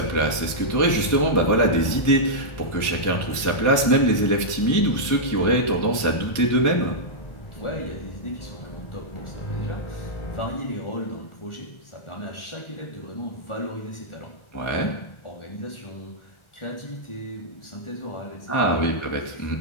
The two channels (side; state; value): right; late; 1.4 ms